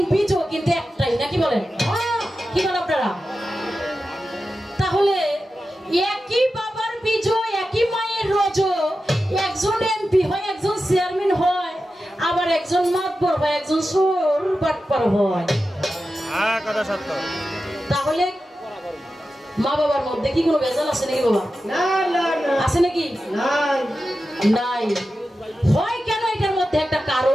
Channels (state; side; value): normal; both; correlation 0.92